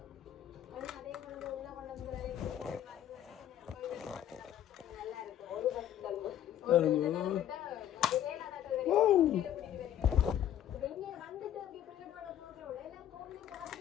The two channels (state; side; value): quieter; right; 11.0 dB